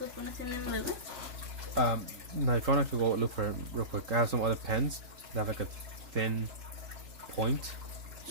pones el nombre, güey? No, if you want, I could go look for it real quick. I have some other pens that have like a thin point.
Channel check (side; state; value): left; late; 3.8 ms